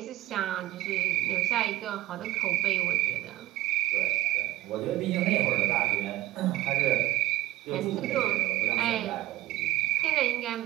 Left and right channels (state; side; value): quieter; left; 15.7 dB